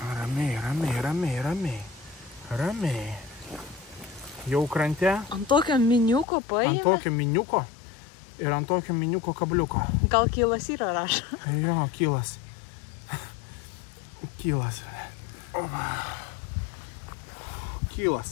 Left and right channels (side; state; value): right; drops out; at 6.2 s